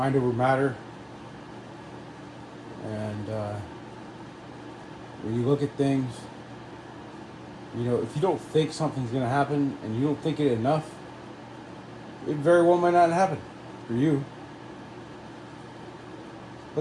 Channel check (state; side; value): identical; both; correlation 1.00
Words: over matter. And when you look at things, you know, if you don't think something's going to happen and you don't think it enough, it very well might not happen for you.